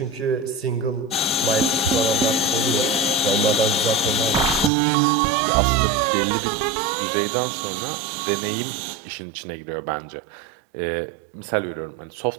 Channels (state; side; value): drops out; left; at 4.7 s